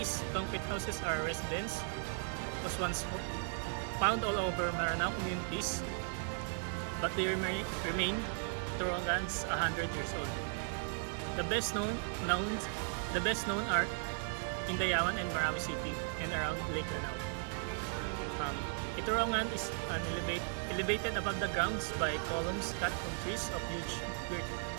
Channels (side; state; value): left; silent; 53 dB below the other